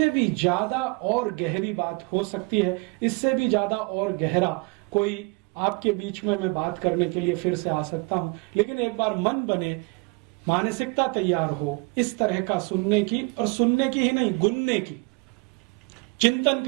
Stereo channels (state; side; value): quieter; left; 29.6 dB